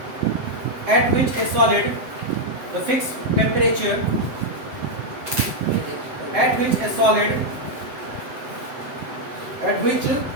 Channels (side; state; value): left; late; 7.7 ms